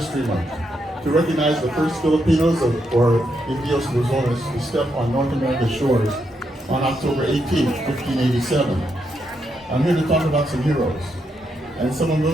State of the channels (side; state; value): both; normal; correlation 0.80